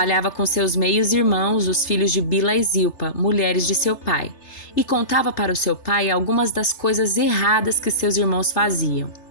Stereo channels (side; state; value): right; late; 3.3 ms